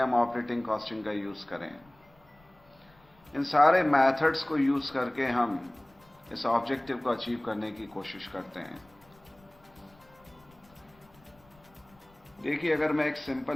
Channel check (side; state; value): left; noise; rumble, 29 dB below the sound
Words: ऑपरेटिंग कॉस्टिंग का यूज करें. इन सारे मेथड्स को यूज करके हम इस ऑब्जेक्टिव को अचीव करने की कोशिश करते हैं. देखिए, अगर मैं एक